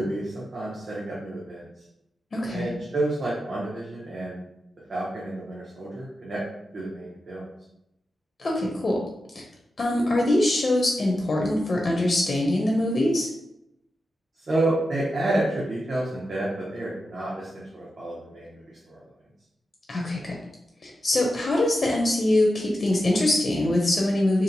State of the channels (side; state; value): both; normal; correlation 0.90